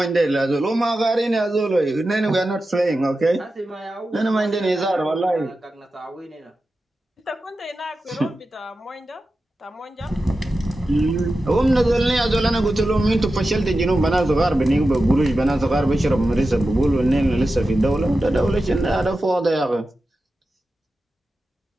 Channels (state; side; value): normal; both; correlation 0.92